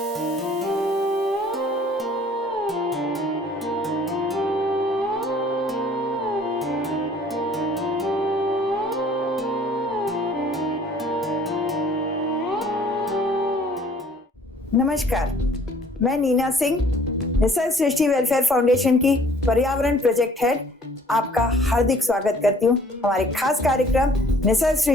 मैं नीना सिंह, निसर्ग सृष्टि वेलफेयर फाउंडेशन की पर्यावरण प्रोजेक्ट हेड आपका हार्दिक स्वागत करती हूँ हमारे खास कार्यक्रम निसर्ग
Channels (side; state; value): both; normal; correlation 0.55